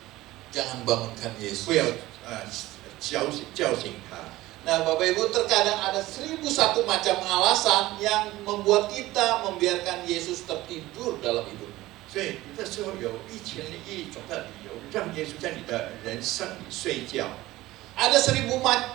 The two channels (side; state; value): left; quieter; 17.4 dB